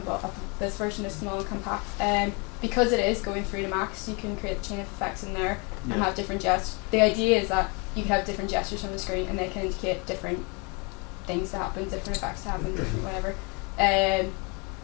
Well, this version is small and compact. Because it is going through to max, you can create a chain of effects in there and have different gestures. The idea is that you can have different gestures on the screen and they can indicate different things to happen, different effects to happen, different whatever.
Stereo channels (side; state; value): right; quieter; 31.7 dB